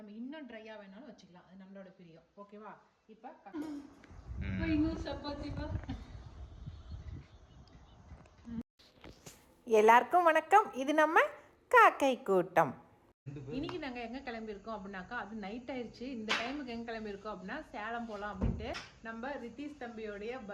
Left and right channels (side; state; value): both; identical; correlation 1.00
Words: இன்னும் ட்ரையாக வேணாலும் வச்சுக்கலாம், அது நம்மளோட பிரியம். ஓகேவா? இப்போ இன்னும் சப்பாத்திப்பா. எல்லாருக்கும் வணக்கம். இது நம்ம காக்கை கூட்டம். இன்னைக்கு நாங்கள் எங்கே கிளம்பியிருக்கோம் அப்படின்னாக்கா, அது நைட் ஆயிடுச்சு. இந்த டைமுக்கு எங்கே கிளம்பியிருக்கோம் அப்படின்னா சேலம் போகலாம் அப்படின்ட்டு. நம்ம ரித்தீஷ் தம்பியோடைய